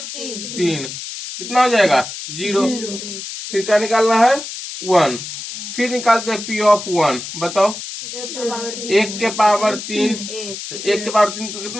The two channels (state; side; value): noise; left; hiss, 9 dB below the sound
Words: कितना हो जाएगा 0। फिर क्या निकालना है 1, फिर निकालते हैं P ऑफ 1, बताओ 1 के पावर 3, तो 1 के पावर 3